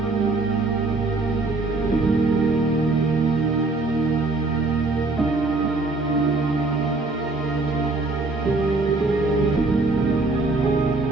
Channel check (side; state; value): left; quieter; 3.3 dB